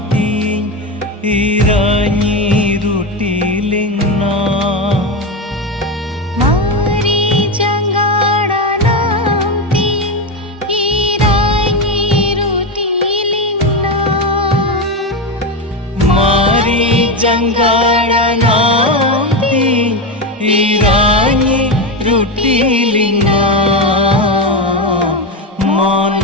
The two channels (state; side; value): normal; both; correlation 0.14